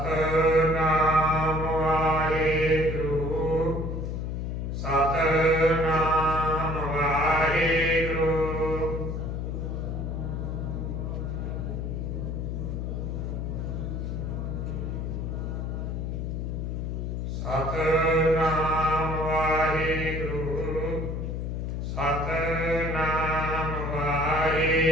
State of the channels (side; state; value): left; noise; hum, 3 dB below the sound